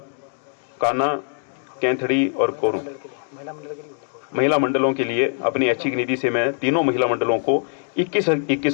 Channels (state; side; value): silent; right; 58 dB below the other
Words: काना, कैंथड़ी और कोरू महिला मंडलों के लिए अपनी ऐच्छिक निधि से मैं तीनों महिला मंडलों को